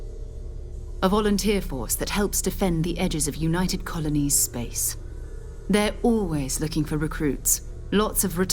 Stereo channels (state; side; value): identical; both; correlation 1.00